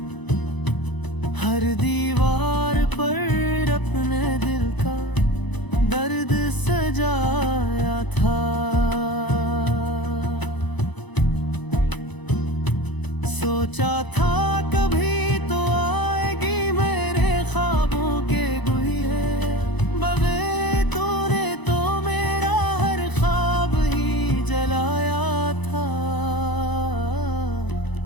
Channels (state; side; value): late; right; 1.0 ms